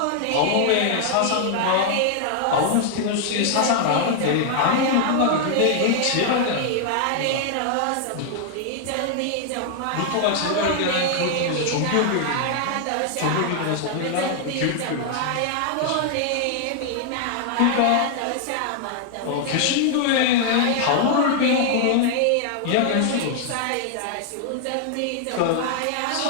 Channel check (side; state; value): both; different; correlation 0.00